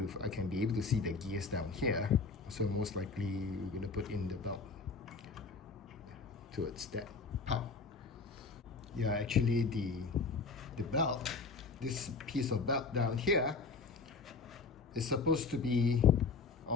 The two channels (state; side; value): quieter; right; 4.4 dB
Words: I can be able to see the gears down here, so most likely we're going to put in the belt towards that part. Yeah, actually the belt, this piece of belt down here is supposed to be